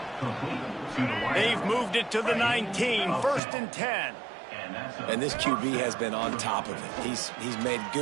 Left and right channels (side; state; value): left; drops out; at 3.4 s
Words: They've moved it to the 19, 1st and 10. And this QB has been on top of it. He's made